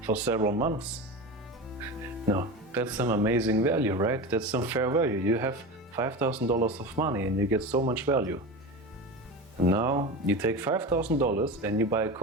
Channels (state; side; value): normal; both; correlation 0.27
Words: for several months. No, that's some amazing value, right? That's some fair value. You have $5,000 of money and you get so much value. And now you take $5,000 and you buy